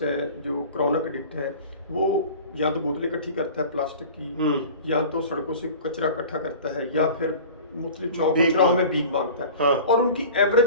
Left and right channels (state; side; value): inverted; both; correlation -0.39